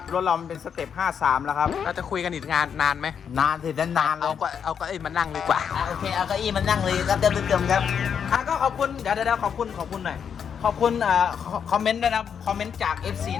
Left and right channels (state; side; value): quieter; right; 7.5 dB